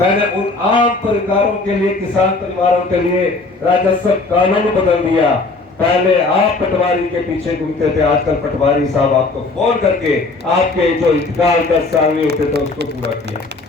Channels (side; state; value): right; quieter; 3.5 dB